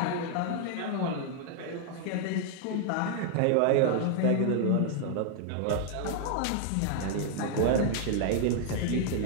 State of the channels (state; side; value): different; both; correlation 0.00